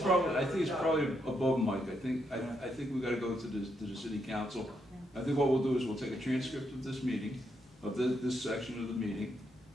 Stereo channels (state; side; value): normal; both; correlation 0.79